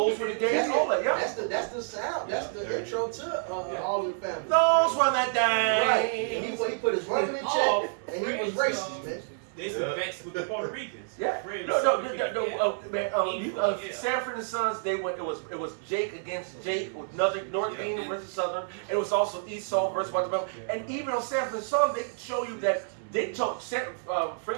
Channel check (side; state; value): left; silent; 59 dB below the other